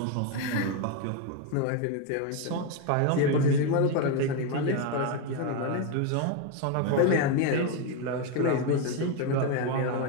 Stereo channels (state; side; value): different; both; correlation 0.02